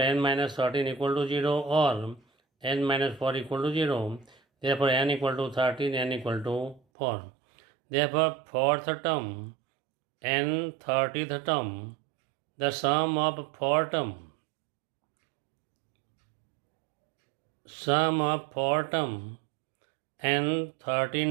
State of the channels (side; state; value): left; drops out; at 6.8 s